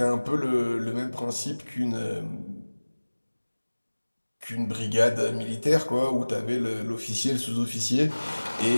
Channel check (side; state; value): both; inverted; correlation -1.00